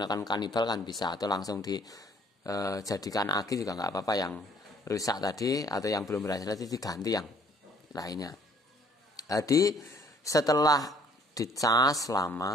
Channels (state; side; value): normal; both; correlation 0.61